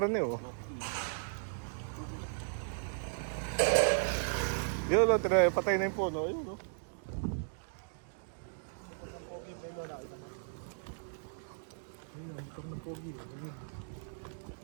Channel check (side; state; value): left; silent; digital silence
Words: eh. Oh. Yun, patay na yung puno. Ayun, oh.